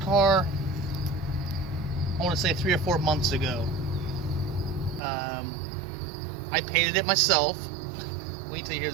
I want to say 3 or 4 months ago. I painted it myself. Wait till you hear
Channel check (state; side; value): drops out; left; at 5.0 s